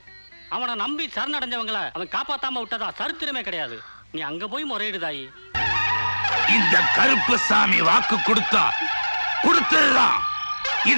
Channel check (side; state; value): both; inverted; correlation -1.00